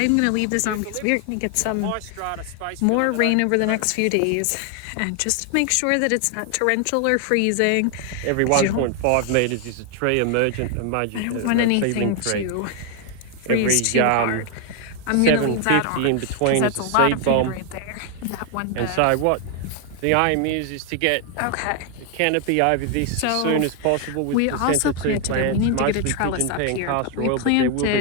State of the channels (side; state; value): both; different; correlation 0.00